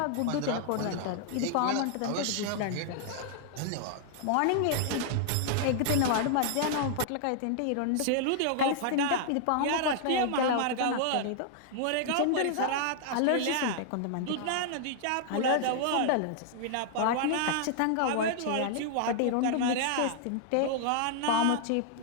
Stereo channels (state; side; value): different; both; correlation -0.01